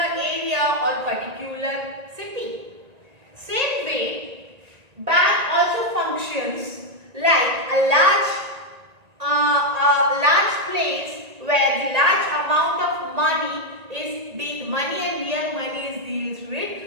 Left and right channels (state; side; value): late; left; 1.9 ms